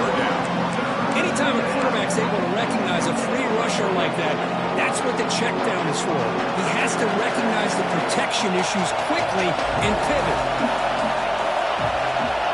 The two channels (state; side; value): identical; both; correlation 1.00